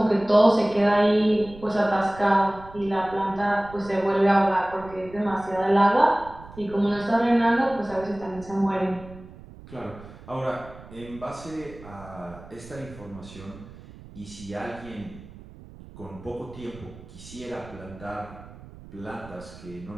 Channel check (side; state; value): right; noise; rumble, 18 dB below the sound